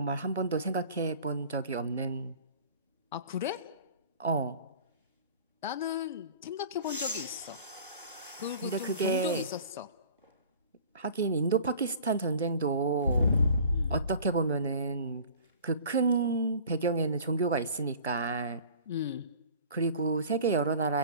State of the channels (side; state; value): both; inverted; correlation -0.44